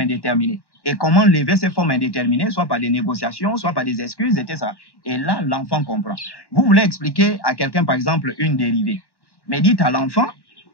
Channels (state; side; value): late; right; 1.1 ms